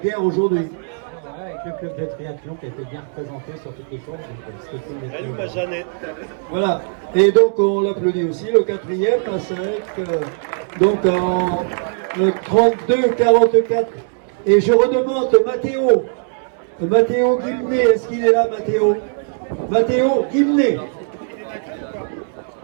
aujourd'hui. Voilà, avec le club de triathlon qui a été bien représenté sur toutes les courses. Donc, c'était cool. Salut ma Jeannette. Voilà, et donc on l'applaudit aussi, le quatrième, à 5, donc en 32-44. Et je redemande Mathéo Guimné, est-ce qu'il est là, Mathéo? Mathéo Guimné.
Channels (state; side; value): silent; left; 66 dB below the other